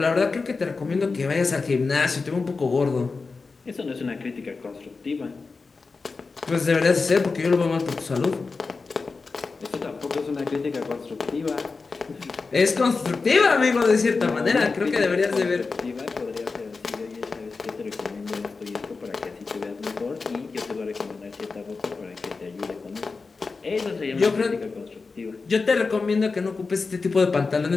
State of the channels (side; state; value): right; quieter; 4.3 dB